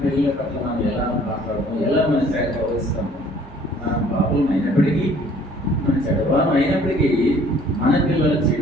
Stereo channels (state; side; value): normal; both; correlation 0.56